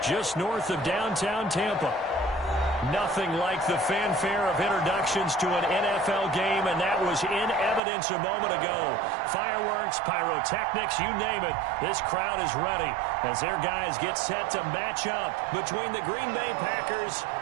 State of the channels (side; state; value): left; drops out; at 7.8 s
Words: just north of downtown Tampa. Nothing like the fanfare of introductions to an NFL game, and that was in evidence a moment ago. Fireworks, pyrotechnics, you name it. This crowd is ready as their guys get set to match up between the Green Bay Packers